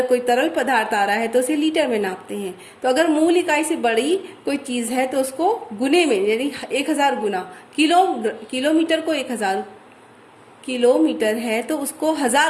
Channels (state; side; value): identical; both; correlation 1.00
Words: कोई तरल पदार्थ आ रहा है तो उसे लीटर में नापते हैं। तो अगर मूल इकाई से बड़ी कोई चीज है तो उसको गुने में, यानी 1000 गुना, किलोमीटर को 1000 किलोमीटर है तो उसको